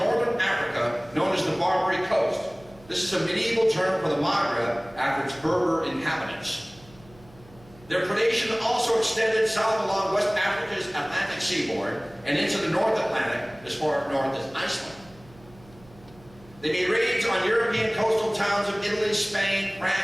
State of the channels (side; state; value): right; noise; hum, 24 dB below the sound